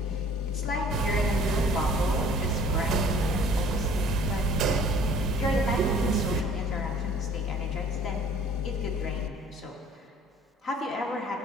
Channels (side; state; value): both; normal; correlation 0.52